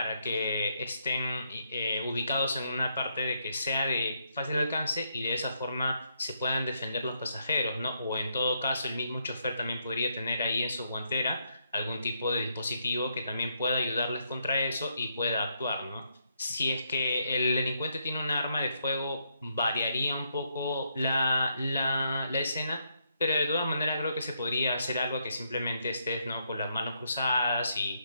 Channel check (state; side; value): inverted; both; correlation -0.77